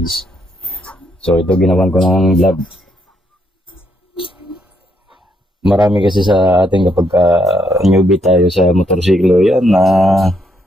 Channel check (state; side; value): normal; both; correlation 0.75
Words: So, ito ginawan ko ng vlog. Marami kasi sa ating kapag newbie tayo sa motorsiklo yan na